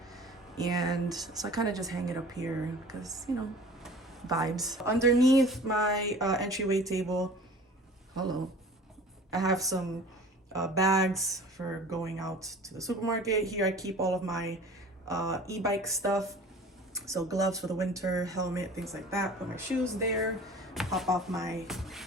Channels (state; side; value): normal; both; correlation 0.44